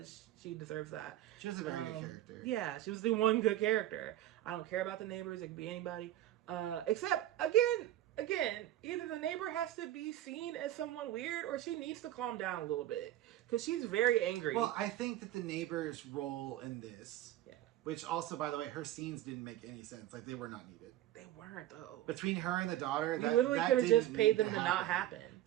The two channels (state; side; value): quieter; left; 13.7 dB